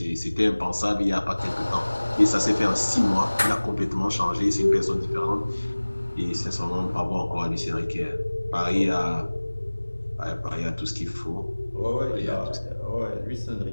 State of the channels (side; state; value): both; inverted; correlation -1.00